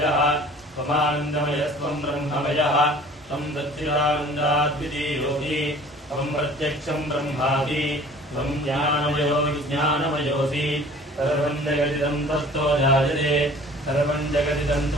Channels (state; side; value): normal; both; correlation 0.48